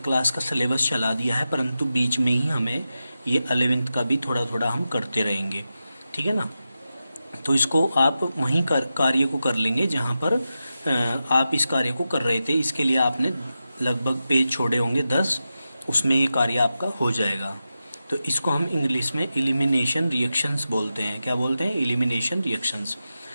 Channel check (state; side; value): inverted; both; correlation -0.91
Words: क्लास का सिलेबस चला दिया है, परंतु बीच में ही हमें ये 11वीं का भी थोड़ा थोड़ा हम करते रहेंगे, ठीक है ना। तो इसको आप वहीं कार्य को कर लेंगे जहाँ पर आप इस कार्य को कर रहे थे। इसके लिए आपने लगभग पेज छोड़े होंगे 10, उसमें ये कार्य आपका हो जाएगा। तो इसको हम इंग्लिश में एलिमिनेशन रिएक्शंस बोलते हैं। क्या बोलते हैं? Elimination reactions.